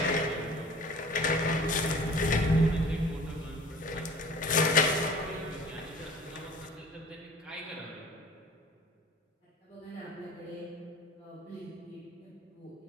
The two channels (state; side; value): normal; both; correlation 0.46